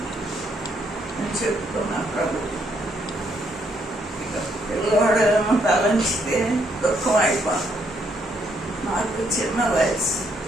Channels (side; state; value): both; normal; correlation 0.73